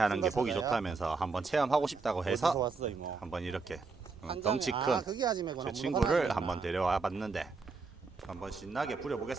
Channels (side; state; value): left; quieter; 4.4 dB